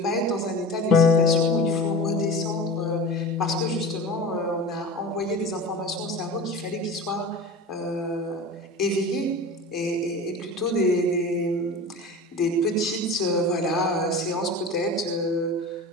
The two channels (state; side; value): normal; both; correlation 0.33